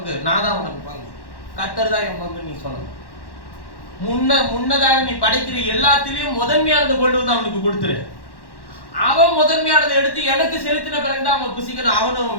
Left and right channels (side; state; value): right; late; 1.1 ms